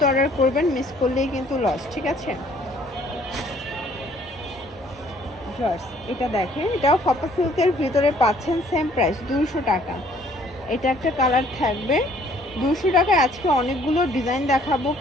অর্ডার করবেন, মিস করলেই কিন্তু লস, ঠিক আছে? এটা দেখেন, এটাও ফাপা সিল্কের ভিতরে পাচ্ছেন, সেম প্রাইস 200 টাকা। এটা একটা কালার থাকবে 200 টাকায়। আজকে অনেকগুলো ডিজাইন দেখাবো,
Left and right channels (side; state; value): both; normal; correlation 0.60